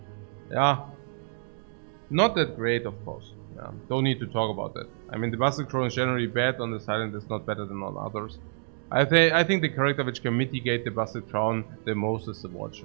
Yeah. Not that great, of course. Yeah. Don't need to talk about that. I mean, the Busted Crown is generally bad on the Silent, it's not better than on others. I think the character which can mitigate the Busted Crown the most is the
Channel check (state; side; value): silent; left; digital silence